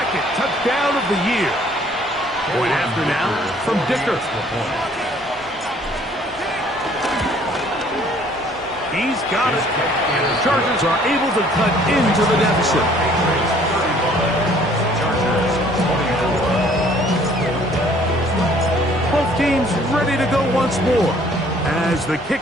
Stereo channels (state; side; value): normal; both; correlation 0.58